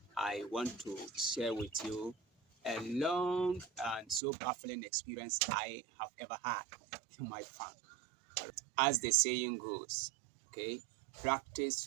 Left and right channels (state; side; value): drops out; left; at 4.2 s